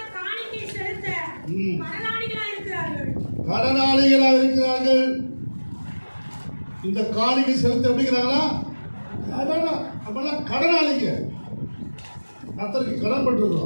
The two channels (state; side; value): inverted; both; correlation -1.00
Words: கடனாளிகளா இருக்கிறார்கள். இந்த காணிக்கை செலுத்த எப்படிங்கிறாங்களா? கடனாளிங்க, கர்த்தருக்கு கடன்